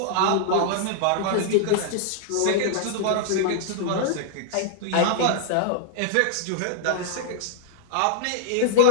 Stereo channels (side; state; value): both; different; correlation -0.01